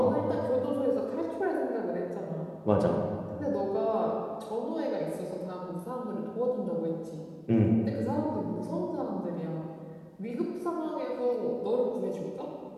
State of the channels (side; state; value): both; identical; correlation 1.00